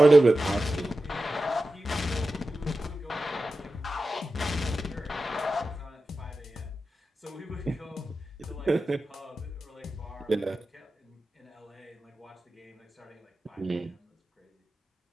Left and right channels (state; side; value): normal; both; correlation 0.93